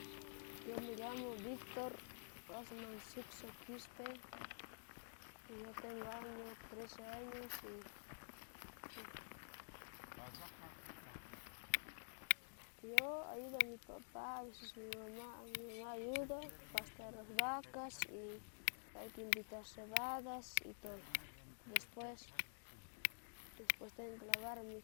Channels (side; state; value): right; silent; digital silence